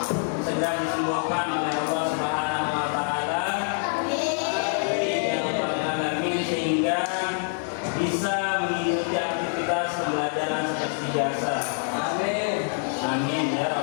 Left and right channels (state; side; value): silent; right; 57 dB below the other